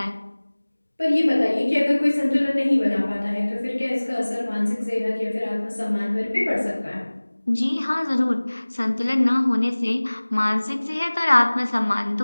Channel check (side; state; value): both; inverted; correlation -1.00